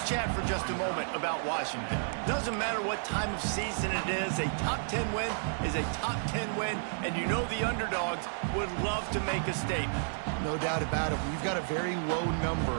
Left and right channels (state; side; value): silent; left; 57 dB below the other